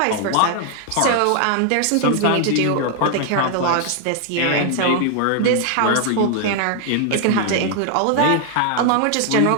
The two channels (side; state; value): both; different; correlation 0.00